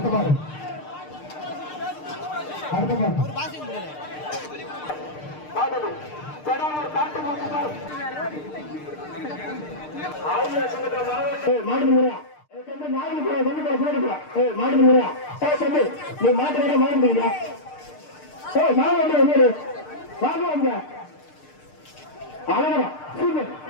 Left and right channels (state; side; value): late; right; 6.6 ms